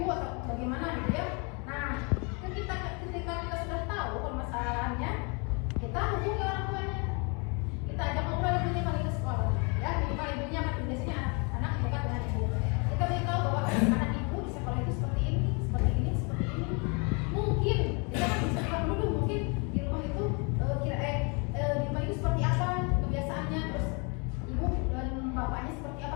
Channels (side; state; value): right; quieter; 33.0 dB